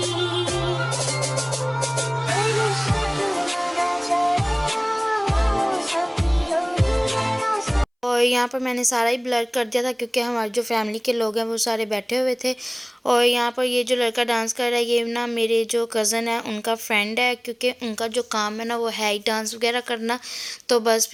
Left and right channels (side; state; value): both; identical; correlation 1.00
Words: और यहाँ पर मैंने सारा ही ब्लर कर दिया था क्योंकि हमारे जो फैमिली के लोग हैं वो सारे बैठे हुए थे। और यहाँ पर ये जो लड़का डांस कर रहा है ये ना मेरे जो कज़न है उनका फ्रेंड है, क्योंकि उनका जो काम है ना वो है ही डांस वगैरह करना, तो बस